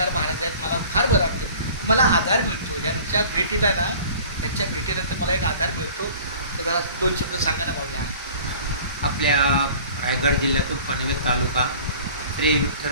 महाराज आहेत. मला फार बरं वाटतं. मला आधार मिळतो यांच्या भेटीला ना. त्यांच्या भेटीनंतर मला एक आधार मिळतो. तर जरा 2 शब्द सांगा ना माऊली. आपल्या रायगड जिल्ह्यातून पनवेल तालुका श्री विठ्ठल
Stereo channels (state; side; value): inverted; both; correlation -0.46